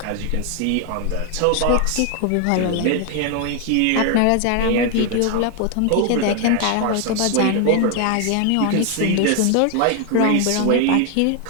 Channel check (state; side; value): different; both; correlation 0.01